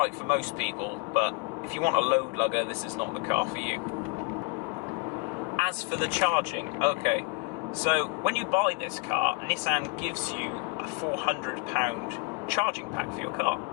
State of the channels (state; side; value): quieter; right; 29.6 dB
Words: for most people, but if you want a load lugger, this is not the car for you. As for the charging, okay, so when you buy this car, Nissan gives you a £400 charging pack for your car,